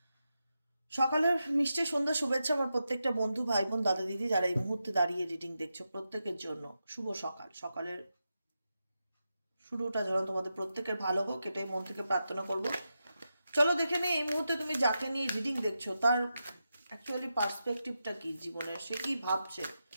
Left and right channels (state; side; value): inverted; both; correlation -0.88